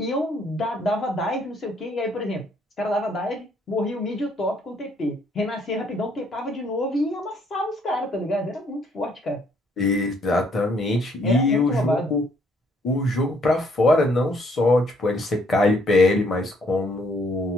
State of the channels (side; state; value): both; normal; correlation 0.67